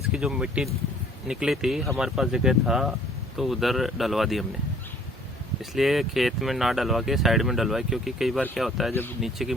जो मिट्टी निकली थी हमारे पास जगह था तो उधर डलवा दी हमने, इसलिए खेत में ना डलवा के साइड में डलवाए। क्योंकि कई बार क्या होता है, जब नीचे की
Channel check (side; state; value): both; normal; correlation 0.56